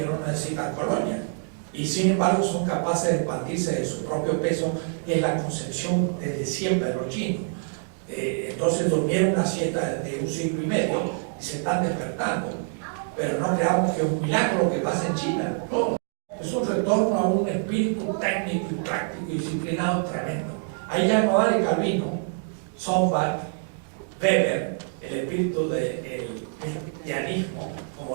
no necesitan colonias, y sin embargo son capaces de expandirse de su propio peso, que es la concepción desde siempre de los chinos. Entonces durmieron una siesta de 1 siglo y medio y se están despertando. Pero no creamos que es un milagro lo que pasa en China. No, es un retorno a un espíritu técnico y práctico y disciplinado tremendo. Ahí ya no vale Calvino, Sombart, Weber, el espíritu del cristianismo como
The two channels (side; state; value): left; silent; 61 dB below the other